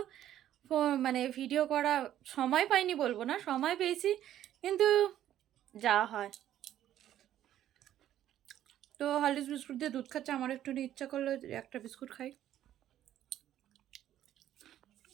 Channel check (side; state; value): left; quieter; 11.9 dB